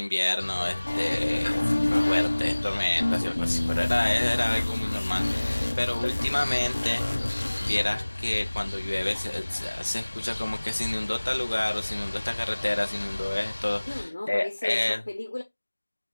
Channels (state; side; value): inverted; both; correlation -1.00